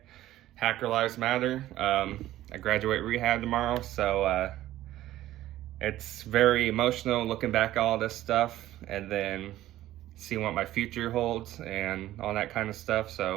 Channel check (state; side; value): quieter; left; 14.4 dB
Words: Hacker Lives Matter. I graduate rehab tomorrow, so it's very emotional looking back at all this stuff and then seeing what my future holds and all that kind of stuff.